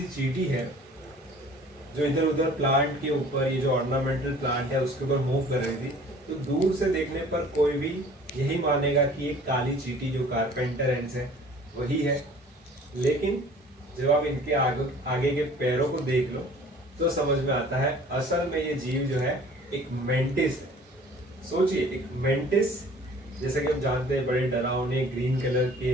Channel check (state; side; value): normal; both; correlation 0.49